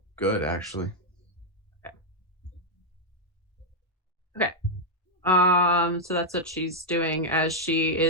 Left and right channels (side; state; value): both; normal; correlation -0.01